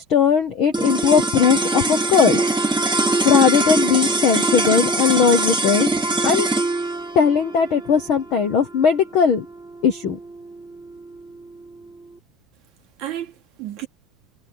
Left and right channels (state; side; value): quieter; right; 3.3 dB